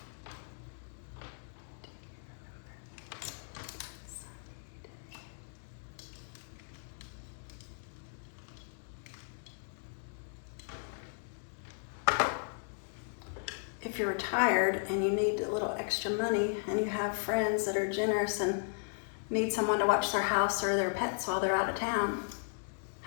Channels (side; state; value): right; silent; digital silence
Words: If you're retired and you need a little extra money and you have friends that are generous and need someone to watch their house or their pets while they're out of town,